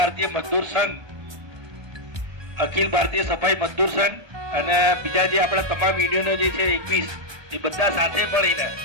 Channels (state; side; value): late; left; 1.2 ms